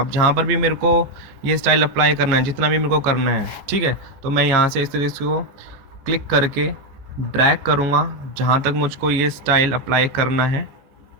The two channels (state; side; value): late; left; 14 ms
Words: जहाँ पर भी मेरे को ये स्टाइल अप्लाई करना है, जितना भी मेरे को करना है, ठीक है, तो मैं यहाँ से इस तरीके से क्लिक करके ड्रैग करूँगा जहाँ तक मुझको ये स्टाइल अप्लाई करना है।